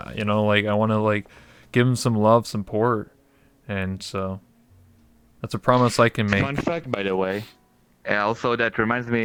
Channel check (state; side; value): identical; both; correlation 1.00